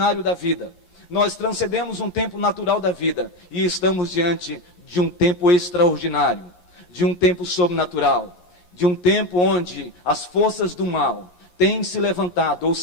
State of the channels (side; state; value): right; late; 11 ms